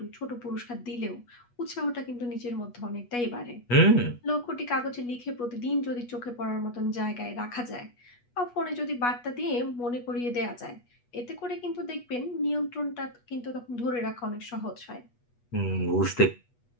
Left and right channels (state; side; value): late; right; 8.2 ms